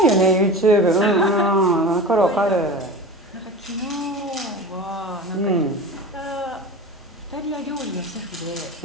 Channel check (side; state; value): both; normal; correlation 0.32